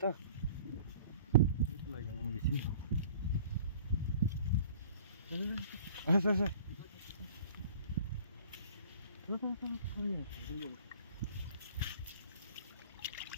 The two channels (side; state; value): both; inverted; correlation -0.49